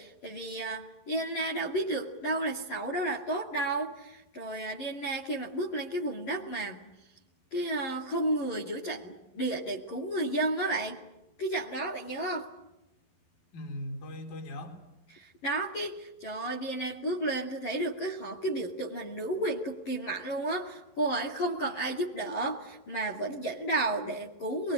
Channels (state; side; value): late; right; 11 ms